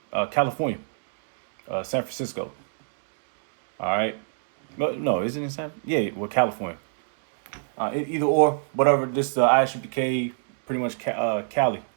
California, San Francisco. All right. But no, isn't it San? Yeah, well, California. Either or, whatever. This ISUPK, pretty much Cali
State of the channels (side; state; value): left; silent; digital silence